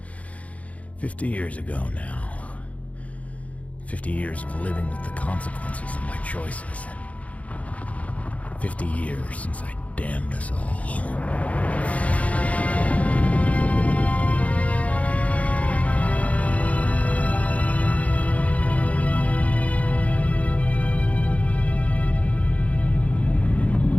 50 years ago now. 50 years of living with the consequences of my choices. 50 years since I damned us all.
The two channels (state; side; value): late; right; 0.067 ms